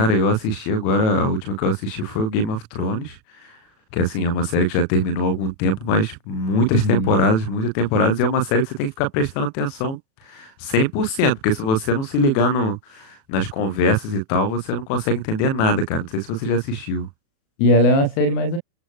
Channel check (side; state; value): right; late; 36 ms